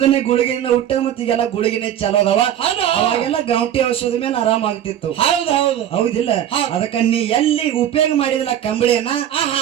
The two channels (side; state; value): left; quieter; 10.7 dB